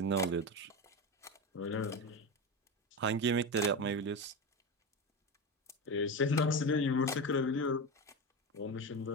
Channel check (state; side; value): normal; both; correlation 0.20